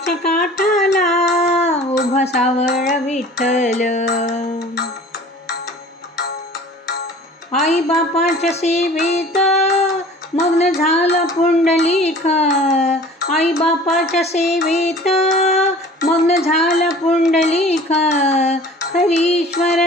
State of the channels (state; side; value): normal; both; correlation 0.45